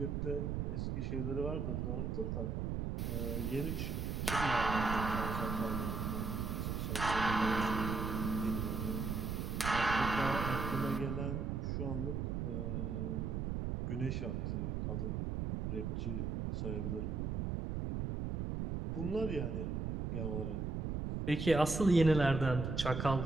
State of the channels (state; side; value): noise; right; rumble, 1 dB below the sound